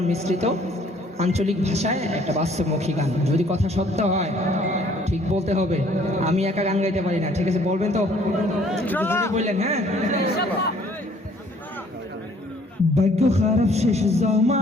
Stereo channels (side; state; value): both; normal; correlation 0.59